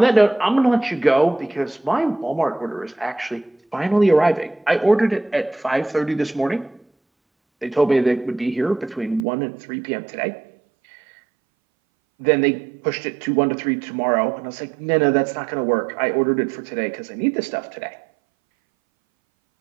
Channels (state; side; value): drops out; left; at 9.2 s